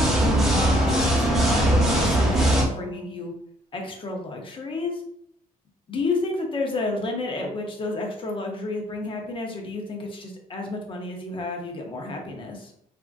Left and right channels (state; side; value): normal; both; correlation 0.65